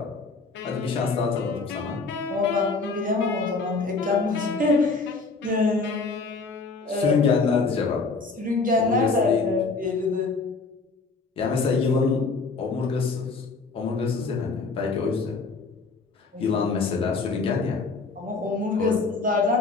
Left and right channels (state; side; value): quieter; right; 4.1 dB